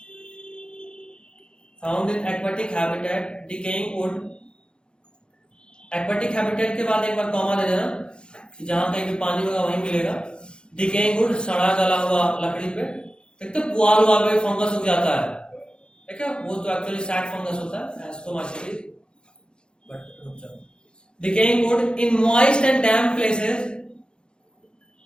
found in aquatic habitat, decaying would. Aquatic habitat के बाद एक बार कॉमा दे देना, जहां कहीं भी पानी होगा वहीं मिलेगा। डिकेइंग वुड, सड़ा गला हुआ लकड़ी पे, एक तो पुआल हुआ पे फंगस उग जाता है, ठीक है, वो तो एक्चुअली सैड फंगस होता है, एस्टोमाइसीलिस, but decaying wood in moist and damp places,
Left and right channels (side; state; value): right; late; 0.051 ms